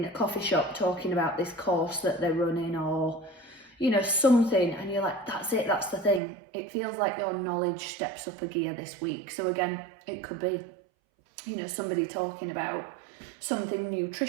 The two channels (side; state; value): left; drops out; at 6.2 s